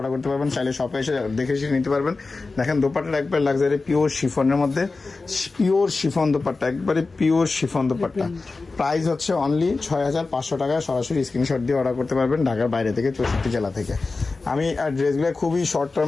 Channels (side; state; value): right; quieter; 3.8 dB